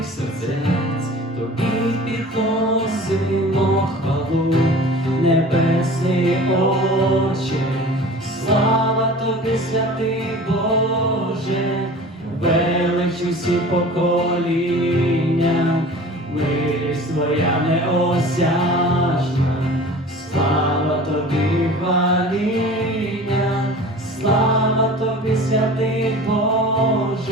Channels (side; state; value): both; normal; correlation 0.41